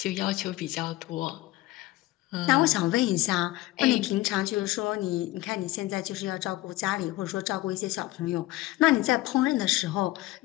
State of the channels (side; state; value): right; quieter; 17.9 dB